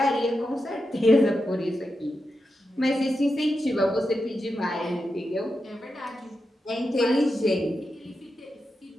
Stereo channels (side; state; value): both; normal; correlation 0.88